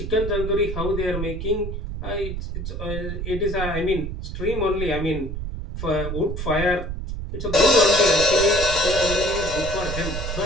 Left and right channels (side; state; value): right; noise; rumble, 5 dB below the sound